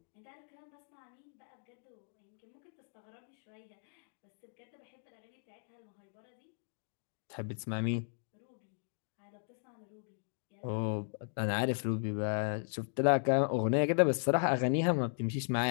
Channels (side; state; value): right; silent; digital silence